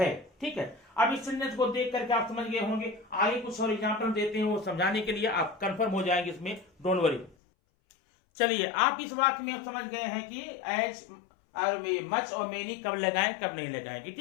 ठीक है, अब इस सेंटेंस को देख करके आप समझ गए होंगे। आगे कुछ और एग्जाम्पल देते हैं वो समझाने के लिए, आप कंफर्म हो जाएंगे इसमें, डोंट वरी। चलिए, आप इस वाक्य में समझ गए हैं कि एज और मच और मेनी कब लगाएं कब नहीं लगाएंगे।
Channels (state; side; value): drops out; right; at 7.4 s